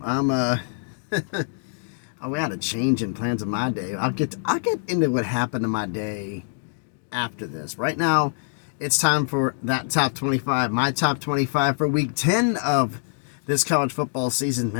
We had a change in plans of my day. I'll get into what happened to my day after this. Right now, it's time for that top 25, my top 25 for week 10 of this college football season.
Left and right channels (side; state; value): right; silent; digital silence